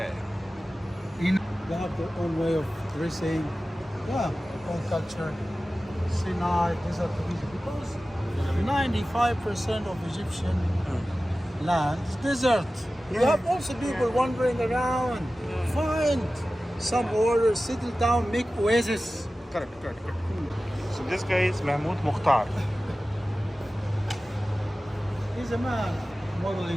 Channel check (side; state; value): both; normal; correlation 0.96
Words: In They have their own way of dressing. Yeah, own culture. Sinai, desert of Egypt. Because 95% of Egyptian land is desert. You have also people wandering around, find some order, settle down, make oasis. Correct. So this guy is Mahmoud Mukhtar. He's a man